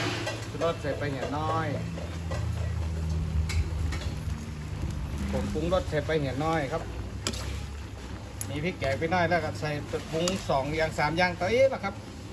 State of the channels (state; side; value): identical; both; correlation 1.00